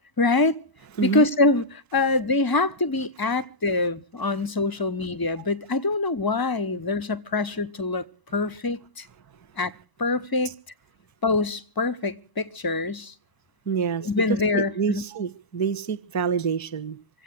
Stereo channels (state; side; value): late; right; 1.0 ms